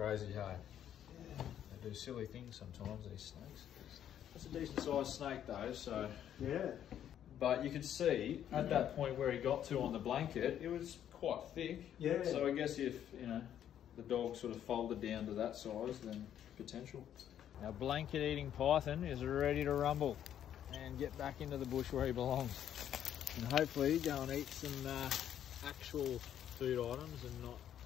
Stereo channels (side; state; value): right; quieter; 10.2 dB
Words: hey? Yeah. They do silly things sometimes, these snakes. That's a decent sized snake though, so... Yeah. But you could see at that point where he got to on the blanket, it was quite thick. Yeah. So I guess if, you know, the dog sort of folded down to that size, then potential. Our blanket eating python is ready to rumble and get back into the bush where he belongs. And hopefully go and eat some actual food items and not